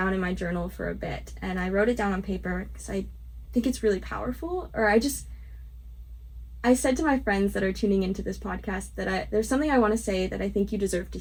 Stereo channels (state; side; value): identical; both; correlation 1.00